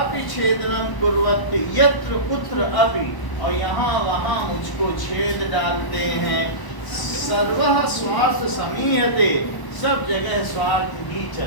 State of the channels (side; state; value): right; late; 1.0 ms